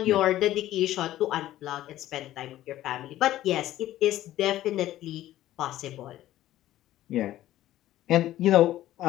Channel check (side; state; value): right; quieter; 14.1 dB